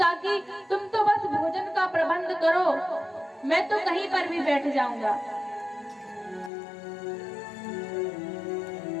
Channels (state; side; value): drops out; right; at 6.5 s